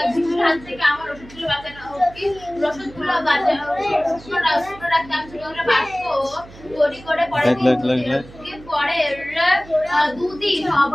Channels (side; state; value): right; noise; hum, 20 dB below the sound